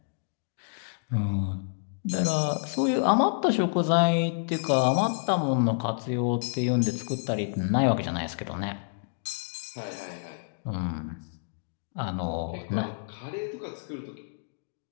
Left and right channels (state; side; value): silent; right; digital silence